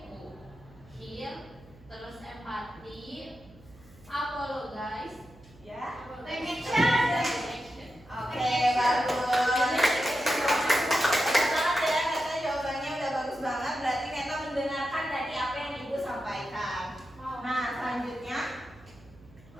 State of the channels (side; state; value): right; noise; hum, 24 dB below the sound